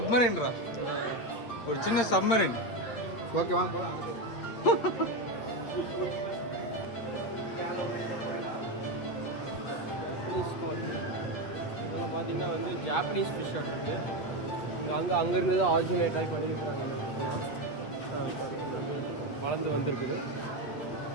ஒரு சின்ன சப்மரீன். ஓகே வாங்க போகலாம். இதெல்லாம் பார்த்தீங்கன்னா வந்து ஜாப்பனீஸ் ஃபிஷ் இருக்கு. அங்கே இருந்து தான் ஆரிஜினேட் ஆகி பண்ணியிருக்கிறாங்க. வளர்ந்து வந்திருக்குது.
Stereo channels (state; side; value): late; right; 8.4 ms